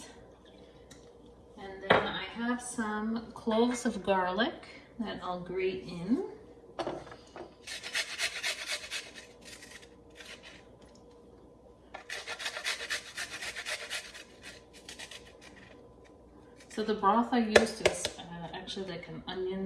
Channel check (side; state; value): both; identical; correlation 1.00